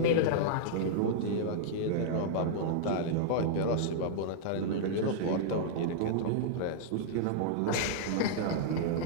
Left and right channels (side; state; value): both; different; correlation -0.02